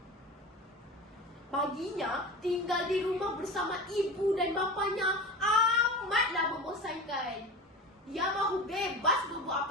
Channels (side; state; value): both; normal; correlation 0.31